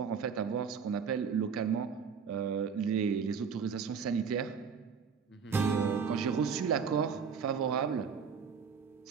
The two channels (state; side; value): quieter; left; 6.3 dB